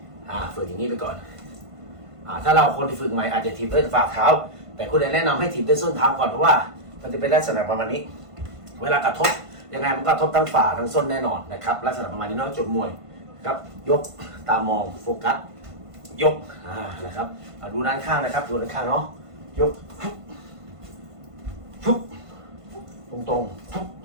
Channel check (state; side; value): late; left; 1.5 ms